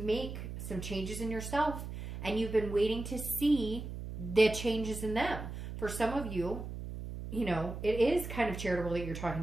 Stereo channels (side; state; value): right; noise; hum, 8 dB below the sound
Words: some changes in yourself, and you've been waiting to see the changes in them. For some of you, you know, it is kind of charitable that you're talking